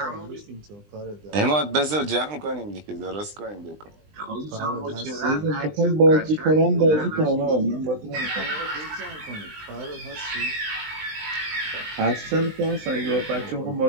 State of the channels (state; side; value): late; left; 20 ms